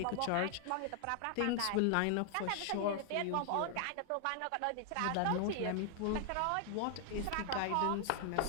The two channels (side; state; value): both; different; correlation 0.00